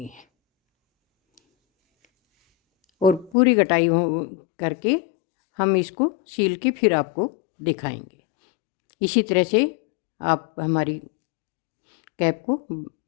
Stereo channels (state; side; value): drops out; right; at 3.3 s